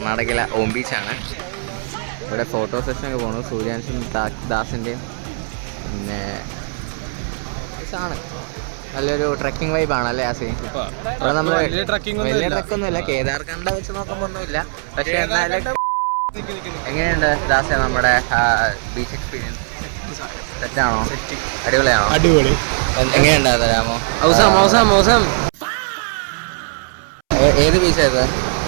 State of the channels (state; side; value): silent; left; 66 dB below the other